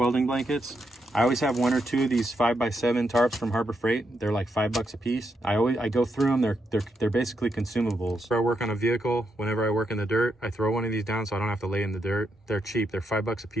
blankets. I always have 1 or 2 of these 5x7 tarps from Harbor Freight. They're like $5 a piece. I go through them. They're basically consumables. If I work on a vehicle, whenever I work in the dirt, I throw one of these down so I don't have to lay in the dirt. They're cheap. They're $5 a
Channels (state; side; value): normal; both; correlation 0.81